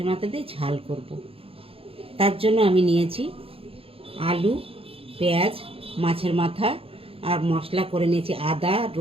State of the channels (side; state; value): left; late; 0.27 ms